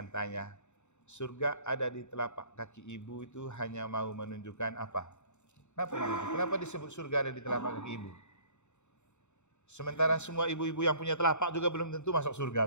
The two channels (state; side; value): late; right; 0.83 ms